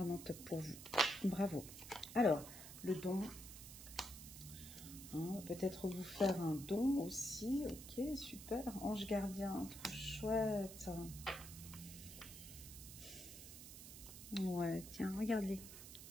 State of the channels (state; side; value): noise; right; hiss, 12 dB below the sound